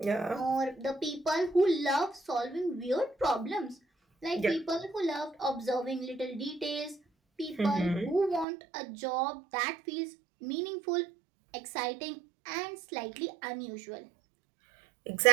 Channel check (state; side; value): drops out; left; at 8.5 s